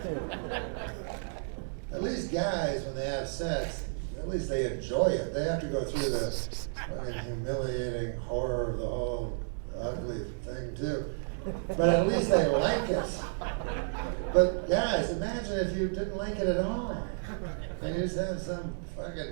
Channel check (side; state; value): left; silent; digital silence